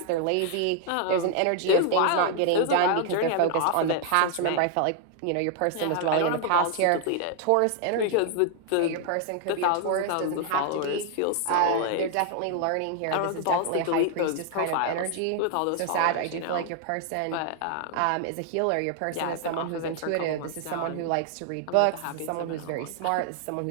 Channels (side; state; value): both; different; correlation 0.00